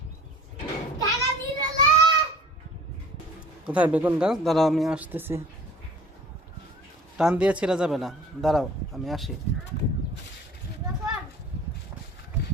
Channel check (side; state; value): both; normal; correlation 0.46